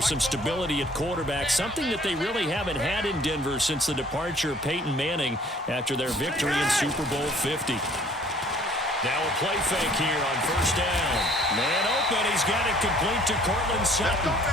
stability at quarterback, something that they really haven't had in Denver since the departure of Peyton Manning after their victory in Super Bowl 50. Now a play fake here on first down. Man open. He's got it complete to Cortland Sutton.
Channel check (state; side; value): normal; both; correlation 0.56